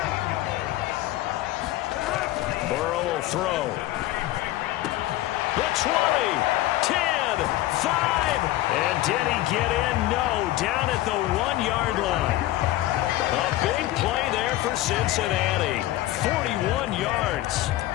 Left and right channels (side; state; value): right; quieter; 15.8 dB